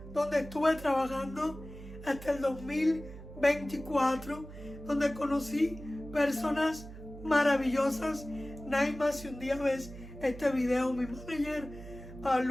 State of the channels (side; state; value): right; noise; hum, 14 dB below the sound